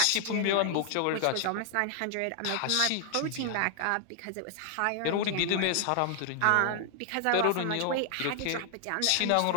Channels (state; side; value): different; both; correlation 0.00